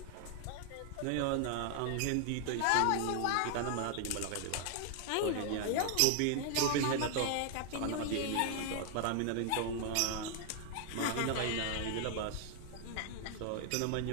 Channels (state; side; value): different; both; correlation 0.00